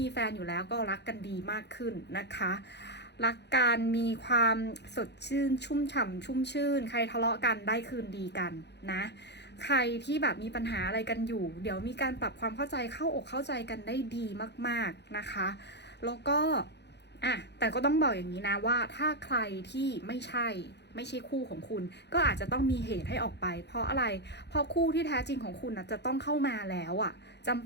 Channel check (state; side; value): late; right; 0.50 ms